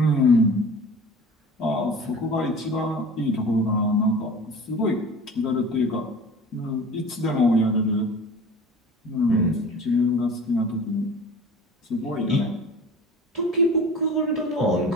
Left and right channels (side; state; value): both; normal; correlation 0.39